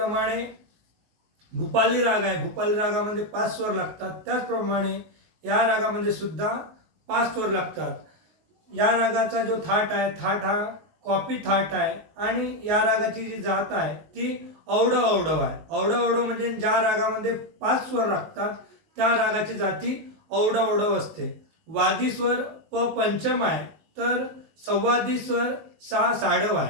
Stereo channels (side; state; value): left; late; 19 ms